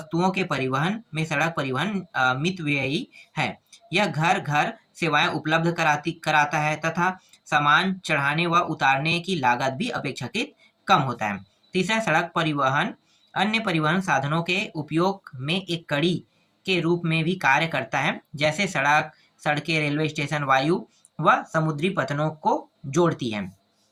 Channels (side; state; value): both; identical; correlation 1.00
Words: के परिवहन में सड़क परिवहन मितव्ययी है। यह घर घर सेवाएं उपलब्ध कराता है तथा सामान चढ़ाने व उतारने की लागत भी अपेक्षाकृत कम होता है। तीसरा, सड़क परिवहन अन्य परिवहन साधनों के उपयोग में एक कड़ी के रूप में भी कार्य करता है, जैसे सड़कें, रेलवे स्टेशन, वायु व समुद्री पथनों को जोड़ती है।